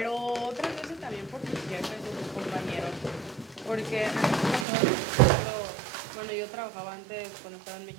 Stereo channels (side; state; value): left; drops out; at 4.7 s